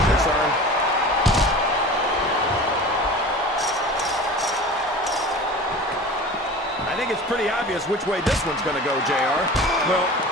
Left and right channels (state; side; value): normal; both; correlation 0.37